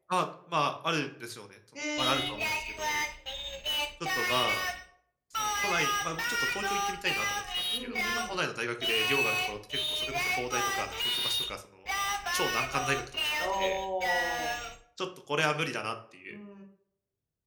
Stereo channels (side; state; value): both; identical; correlation 1.00